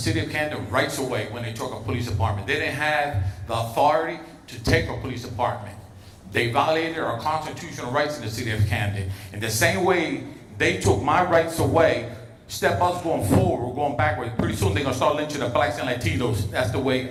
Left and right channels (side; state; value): both; identical; correlation 1.00